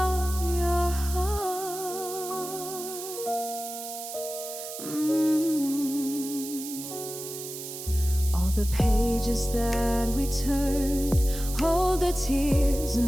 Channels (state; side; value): noise; right; hiss, 9 dB below the sound